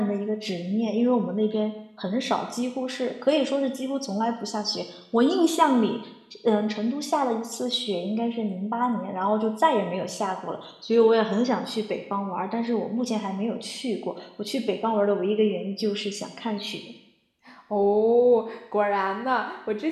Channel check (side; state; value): both; identical; correlation 1.00